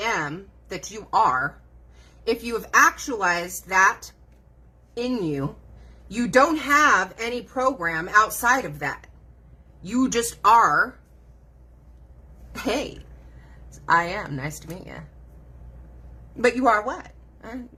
am that you are, if you have actualized that in you, you don't have any program outside of that. You just are. Hey, I am. Nice to meet you. But you are what?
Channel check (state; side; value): identical; both; correlation 1.00